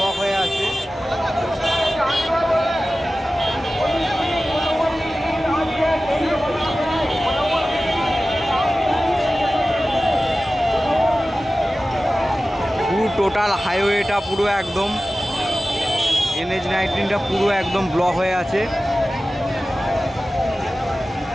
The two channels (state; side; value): normal; both; correlation 0.96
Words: হয়ে আছে। পুরো টোটাল হাইওয়েটা পুরো একদম NH-19টা পুরো একদম ব্লক হয়ে আছে।